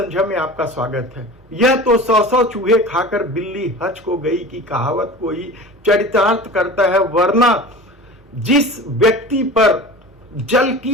में आपका स्वागत है। यह तो 100 चूहे खाकर बिल्ली हज को गई की कहावत को ही चरितार्थ करता है, वरना जिस व्यक्ति पर जल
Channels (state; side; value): normal; both; correlation 0.36